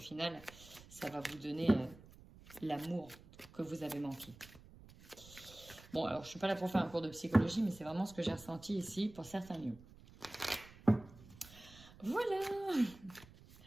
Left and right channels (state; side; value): noise; right; rumble, 21 dB below the sound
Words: ça va vous donner l'amour que vous avez manqué. Bon, alors, je suis pas là pour faire un cours de psychologie, mais c'est vraiment ce que j'ai ressenti ici pour certains lieux. Voilà.